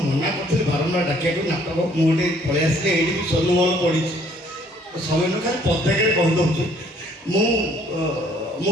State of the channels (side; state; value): both; normal; correlation 0.61